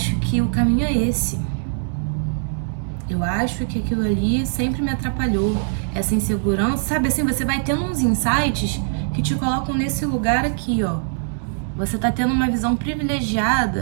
que o caminho é esse. Eu acho que aquilo ali sempre me atrapalhou. Essa insegurança, sabe assim, você vai tendo uns insights que te colocam nesse lugar aqui, ó. Você tá tendo uma visão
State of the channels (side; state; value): left; silent; digital silence